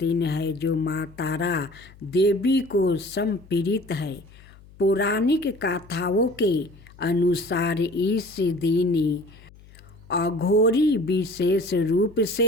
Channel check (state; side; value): noise; left; hum, 23 dB below the sound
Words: है जो माँ तारा देवी को समर्पित है। पौराणिक कथाओं के अनुसार इस दिन अघोरी विशेष रूप